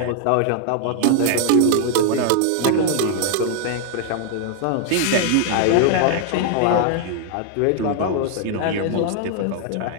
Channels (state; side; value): different; both; correlation 0.00